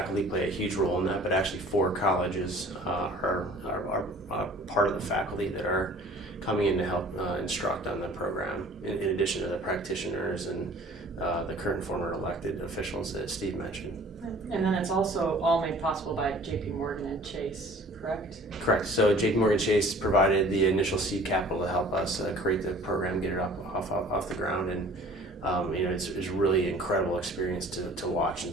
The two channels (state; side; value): normal; both; correlation 0.49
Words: play a huge role in that, but actually 4 colleges are part of the faculty that are coming in to help instruct on the program, in addition to the practitioners and the current and former elected officials that Steve mentioned. And then it's also all made possible by JP Morgan and Chase, correct? Correct. So JP Morgan Chase provided the initial seed capital to help us create the program, get it off the ground, and it's a really incredible experience to watch